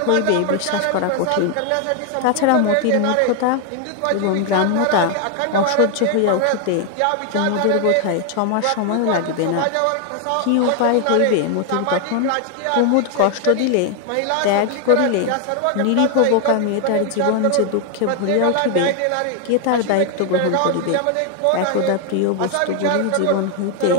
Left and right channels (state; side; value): different; both; correlation 0.00